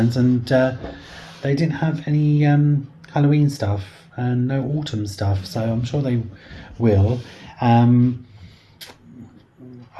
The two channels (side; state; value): both; identical; correlation 1.00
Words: and they didn't have any Halloween stuff and no autumn stuff, so I'm sure they will. I